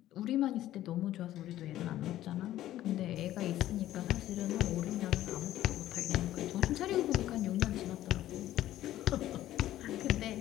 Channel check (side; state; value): right; quieter; 13.7 dB